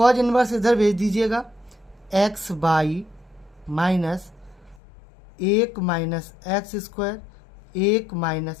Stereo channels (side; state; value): right; drops out; at 4.8 s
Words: इनवर्स इधर भेज दीजिएगा, x by minus 1 minus x square 1